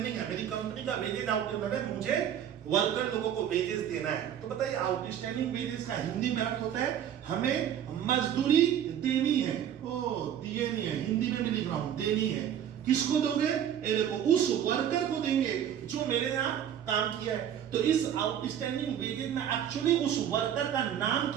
है, मेरी कंपनी का वेजेस आउटस्टैंडिंग है, मुझे वर्कर लोगों को वेजेस देना है। तो बताइए आउटस्टैंडिंग वेजेस का हिंदी में अर्थ होता है हमें मजदूरी देनी है। ओ दिए नहीं है, हिंदी में भी लिख रहा हूं, देनी है। किसको दोगे? ये देखो उस वर्कर को देंगे जो मेरे यहाँ काम किया है। तो इस आउटस्टैंडिंग वेजेस में एक्चुअली उस वर्कर का नाम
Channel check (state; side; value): quieter; left; 9.8 dB